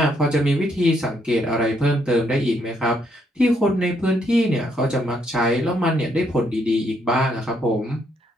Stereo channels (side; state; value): both; normal; correlation 0.73